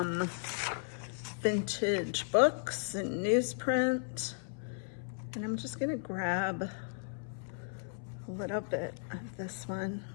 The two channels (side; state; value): right; silent; 54 dB below the other